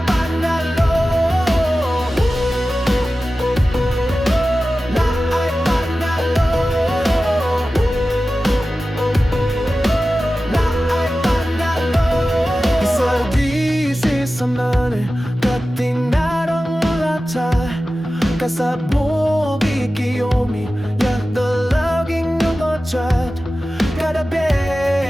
panalo. Na ay panalo. Na ay panalo. Isagisi sa mani, katinarang lata. Kasabog ikiyomi, yakdalaging nungotrat. Kada be,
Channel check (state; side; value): normal; both; correlation 0.95